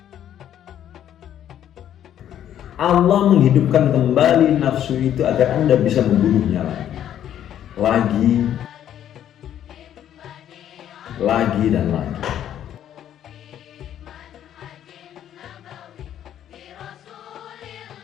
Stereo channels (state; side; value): quieter; right; 10.6 dB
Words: Allah menghidupkan kembali nafsu itu agar Anda bisa membunuhnya lagi dan lagi.